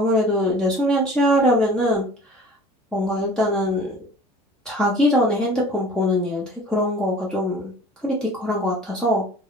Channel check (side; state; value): both; normal; correlation 0.46